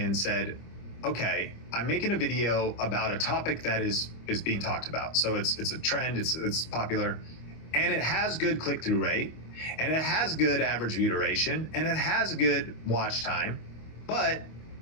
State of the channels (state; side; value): late; right; 26 ms